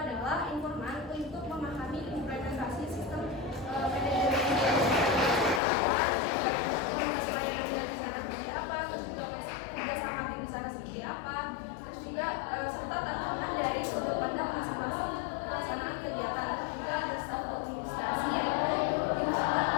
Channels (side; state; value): right; drops out; at 5.6 s